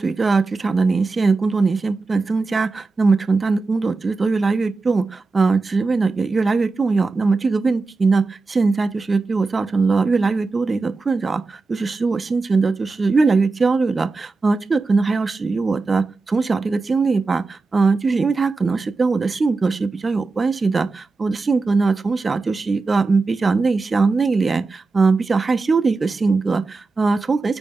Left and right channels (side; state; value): left; quieter; 3.9 dB